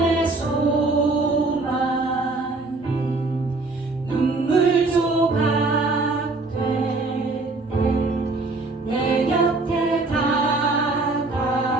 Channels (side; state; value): left; quieter; 3.4 dB